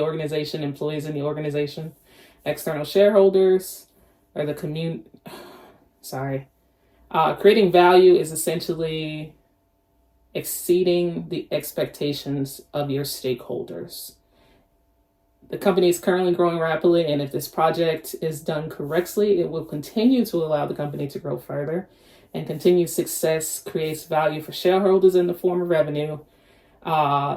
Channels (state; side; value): identical; both; correlation 1.00